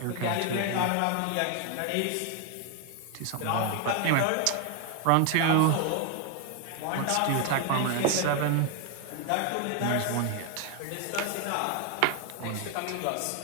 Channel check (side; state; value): both; different; correlation 0.01